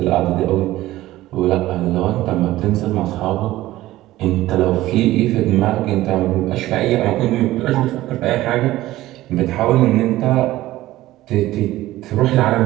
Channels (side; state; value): left; quieter; 16.1 dB